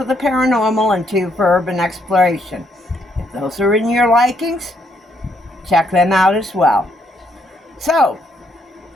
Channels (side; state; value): both; normal; correlation 0.73